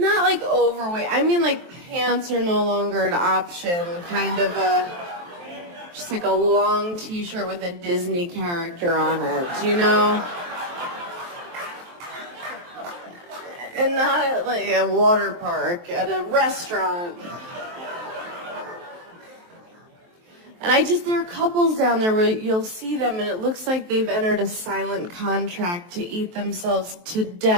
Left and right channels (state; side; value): late; left; 23 ms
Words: like overweight. I mean, like, pants are no longer an option, kind of just like a long t-shirt with a Disney character on it, you know? And not at like a water park, at a restaurant. And there are couples down there where you'll see them and it looks like they've entered a silent contract to eat themselves to